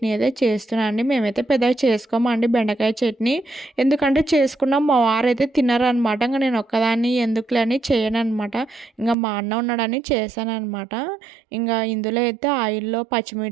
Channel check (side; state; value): left; drops out; at 9.2 s